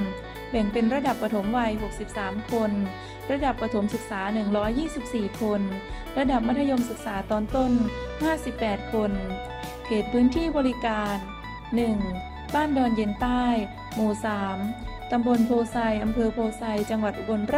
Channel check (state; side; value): identical; both; correlation 1.00